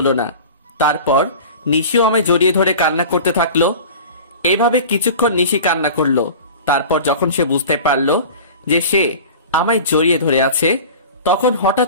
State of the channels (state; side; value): inverted; both; correlation -0.37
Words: না। তারপর নিশিও আমায় জড়িয়ে ধরে কান্না করতে থাকলো। এভাবে কিছুক্ষণ নিশি কান্না করলো। তারপর যখন সে বুঝতে পারলো যে সে আমায় জড়িয়ে ধরে আছে, তখন